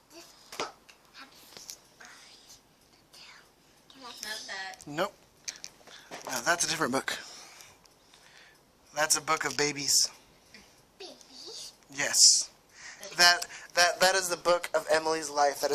This book has eyes. Can I Not see? that. Nope. No, that's a different book. That's a book of babies. Babies? Yes. That is the book of Emily's life that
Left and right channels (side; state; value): both; identical; correlation 1.00